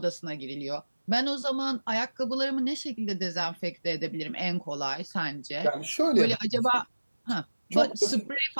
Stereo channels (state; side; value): inverted; both; correlation -1.00